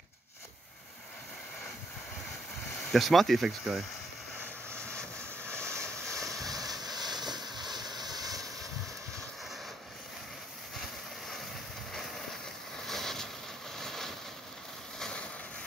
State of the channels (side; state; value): both; normal; correlation 0.74